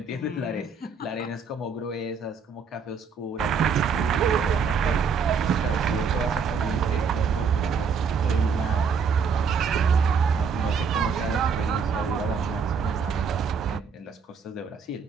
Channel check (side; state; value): left; quieter; 5.7 dB